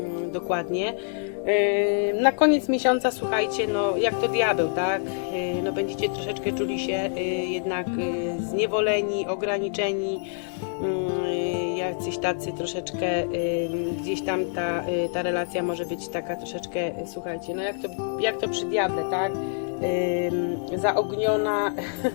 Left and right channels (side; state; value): right; silent; digital silence